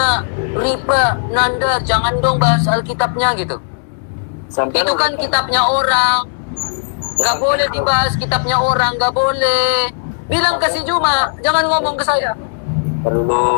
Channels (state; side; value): silent; right; digital silence